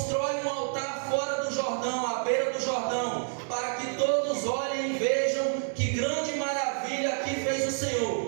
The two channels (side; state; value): left; silent; digital silence